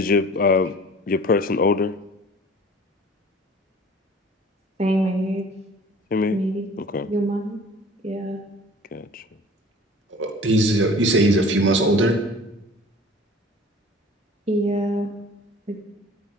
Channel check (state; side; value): normal; both; correlation 0.46